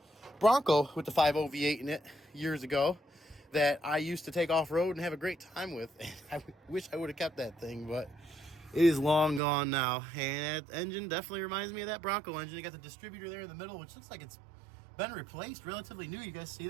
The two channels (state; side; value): drops out; left; at 9.4 s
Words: Bronco with the 5.0 V8 in it years ago that I used to take off-road and have a great time with. I wish I would have kept that thing, but it is long gone now. And that engine definitely reminds me of that Bronco engine. You got the distributor there in the middle, which looks like it's been replaced, relatively new. You guys see